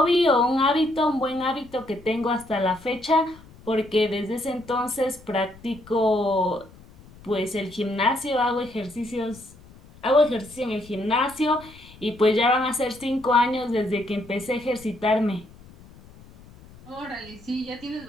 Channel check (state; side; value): noise; left; rumble, 22 dB below the sound